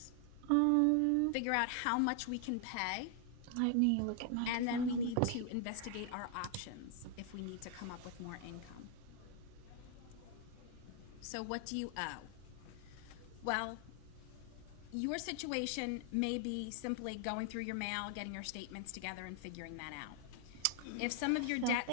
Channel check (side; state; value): both; different; correlation 0.00